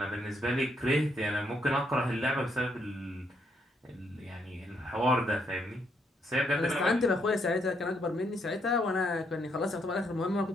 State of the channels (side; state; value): both; normal; correlation 0.74